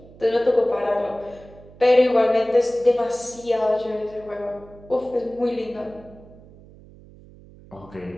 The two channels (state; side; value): noise; right; hum, 22 dB below the sound